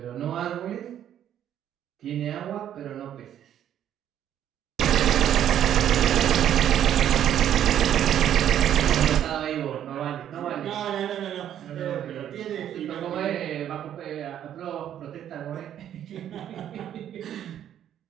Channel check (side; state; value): left; quieter; 10.4 dB